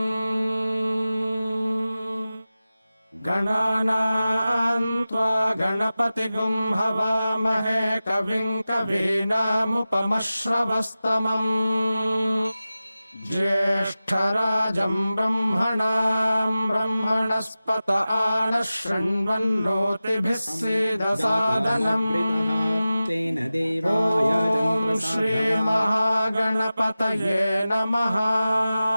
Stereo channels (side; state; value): both; inverted; correlation -0.95